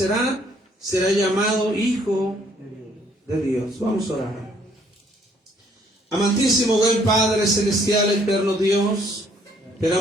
será llamado Hijo de Dios. Vamos a orar. Amantísimo, buen Padre celestial, eterno Dios, te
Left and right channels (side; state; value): both; normal; correlation 0.64